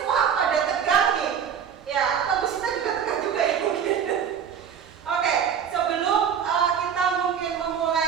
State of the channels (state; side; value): quieter; left; 7.9 dB